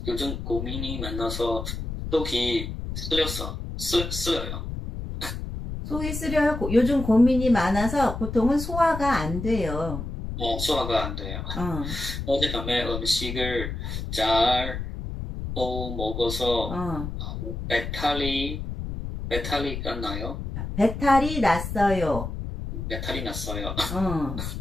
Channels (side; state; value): left; noise; rumble, 6 dB below the sound